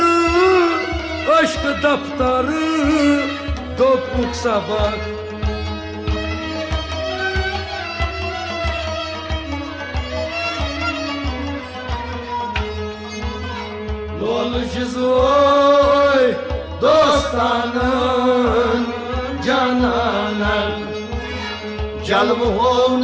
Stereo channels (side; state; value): both; identical; correlation 1.00